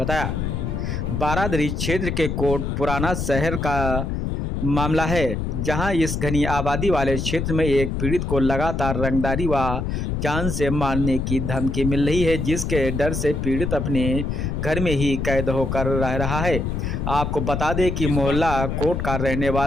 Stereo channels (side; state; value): left; noise; rumble, 2 dB below the sound